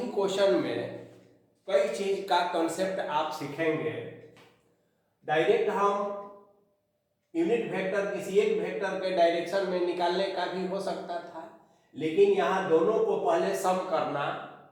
क्वेश्चन में कई चीज का कंसेप्ट आप सीखेंगे। डायरेक्ट हम यूनिट वेक्टर किसी एक वेक्टर के डायरेक्शन में निकालने का भी हो सकता था, लेकिन यहाँ दोनों को पहले सम करना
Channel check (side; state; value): both; identical; correlation 1.00